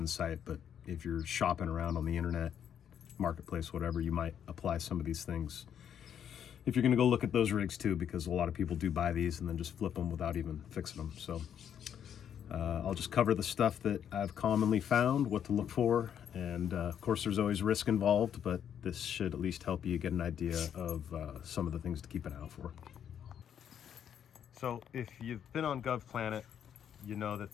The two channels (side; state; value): right; quieter; 9.0 dB